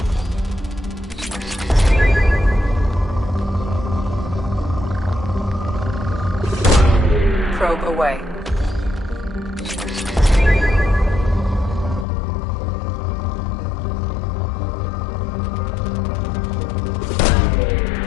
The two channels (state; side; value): drops out; right; at 12.1 s